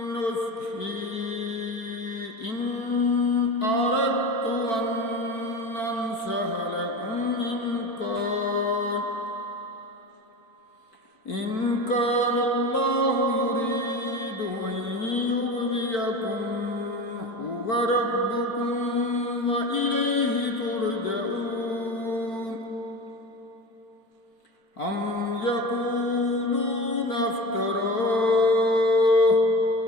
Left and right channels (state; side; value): late; right; 4.5 ms